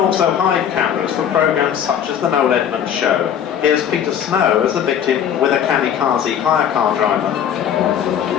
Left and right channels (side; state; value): right; quieter; 9.0 dB